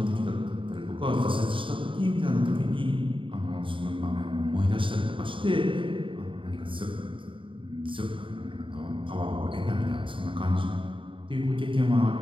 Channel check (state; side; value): late; left; 0.25 ms